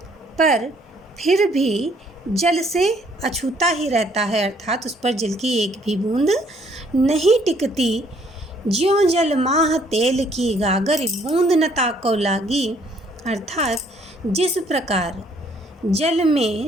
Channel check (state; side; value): normal; both; correlation 0.64